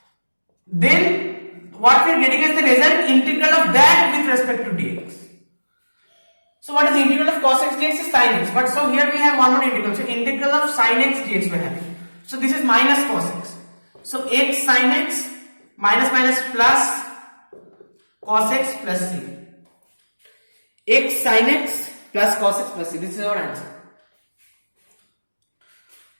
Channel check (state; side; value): inverted; both; correlation -1.00